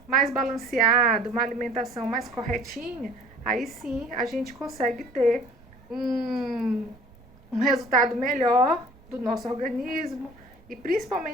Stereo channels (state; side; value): noise; right; rumble, 25 dB below the sound